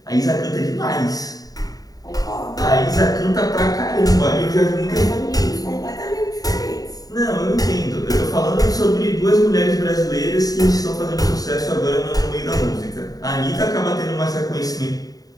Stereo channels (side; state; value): right; late; 0.18 ms